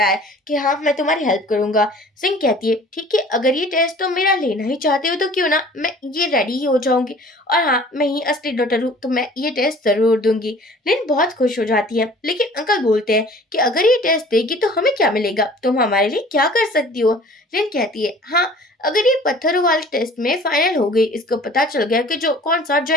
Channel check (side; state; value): both; normal; correlation 0.48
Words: है कि हाँ, मैं तुम्हारी हेल्प करूंगा। सिंह कहती है ठीक है, अगर ये टेस्ट तुम मेरा लेना ही चाहते हो तो क्यों ना, मैं ये रेडी ही हो जाऊंगी, और हाँ, मैं ही असली डॉक्टर हूँ तो मैं ये टेस्ट जरूर दूंगी। लिन बहुत खुश हो जाती है, लेकिन अंकल बोलते हैं कि अगर ये टेस्ट देगी तो हमें क्या मिलेगा, तुम हमारे लिए क्या कर सकती हो। लिन कहती है हाँ, अगर ये पत्थरों वाले टेस्ट में फाइनल हो गई, इसको पता चल गया कि जो कौन सा